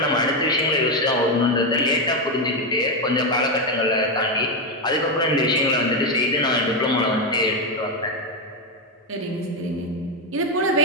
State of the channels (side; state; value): both; normal; correlation 0.08